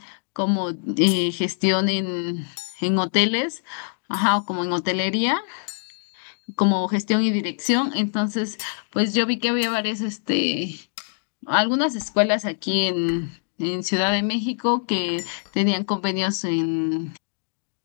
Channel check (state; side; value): silent; right; digital silence